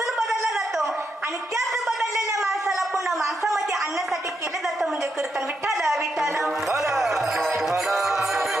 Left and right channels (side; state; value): both; normal; correlation 0.82